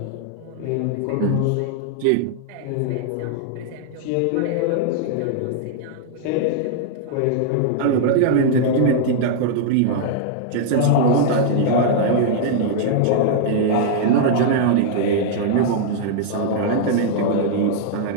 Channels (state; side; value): different; both; correlation -0.01